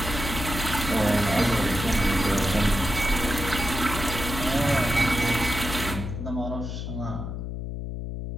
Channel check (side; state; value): left; noise; hum, 5 dB below the sound